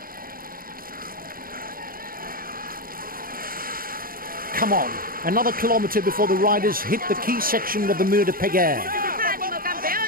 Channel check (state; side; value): late; left; 0.42 ms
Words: Come on, another kilometre before the riders hit the key section of the Mur de Péguerre. Ánimo,